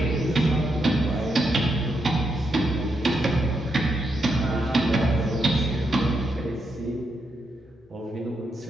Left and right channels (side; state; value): both; normal; correlation 0.81